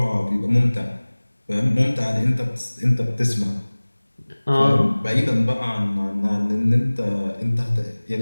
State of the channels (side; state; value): both; inverted; correlation -1.00